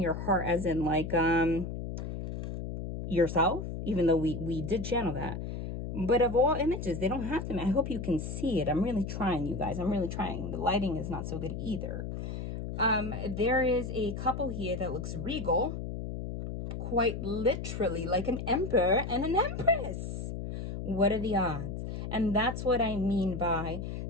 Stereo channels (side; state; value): left; noise; hum, 5 dB below the sound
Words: heart as in like yourself, even though we did channel that. But of all images, they don't have to. I hope you can see it. I'm really trying, you guys. I'm really trying. The lighting is not so good either. There is a couple here that looks regal. Quite literally like an emperor and an empress. What are the odds? And that's what I mean by